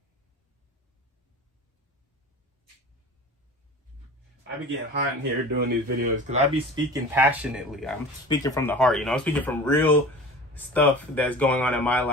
I be getting hot in here doing these videos because I be speaking passionately. I'm speaking from the heart, you know. I'm speaking from real stuff that's going on in my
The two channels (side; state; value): both; normal; correlation 0.37